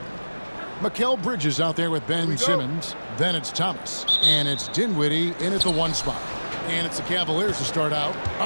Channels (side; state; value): both; inverted; correlation -1.00